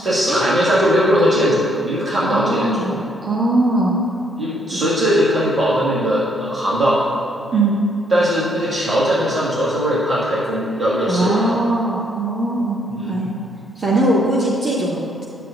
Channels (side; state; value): both; normal; correlation 0.69